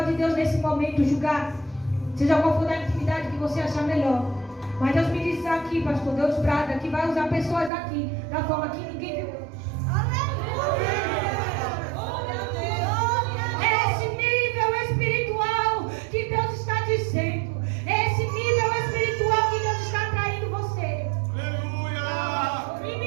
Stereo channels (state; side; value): drops out; left; at 7.7 s